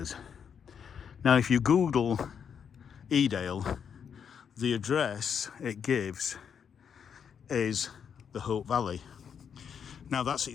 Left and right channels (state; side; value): quieter; right; 7.4 dB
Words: Now if you Google Edale, the address it gives is the Hope Valley. Now that's